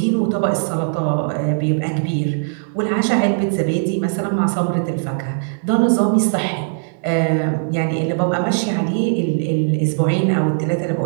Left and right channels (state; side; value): silent; left; digital silence